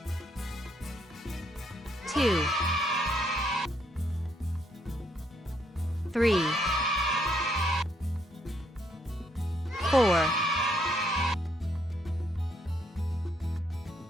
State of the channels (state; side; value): normal; both; correlation 0.72